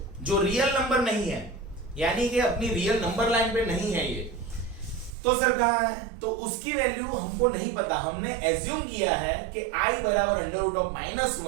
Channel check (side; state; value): left; drops out; at 5.1 s